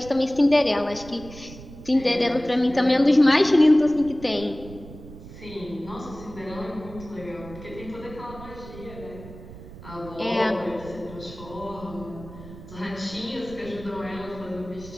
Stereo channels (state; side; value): noise; right; rumble, 15 dB below the sound